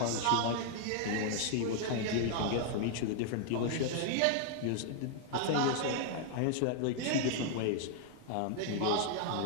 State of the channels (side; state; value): both; different; correlation 0.00